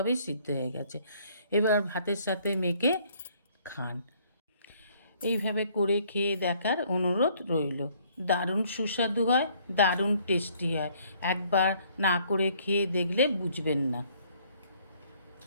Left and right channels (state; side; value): inverted; both; correlation -0.63